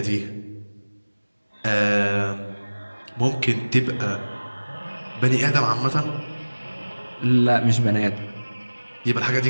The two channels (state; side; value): inverted; both; correlation -1.00